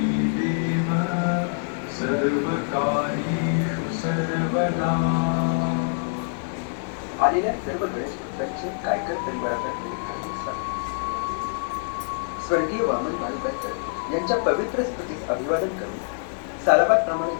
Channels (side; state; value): right; silent; 62 dB below the other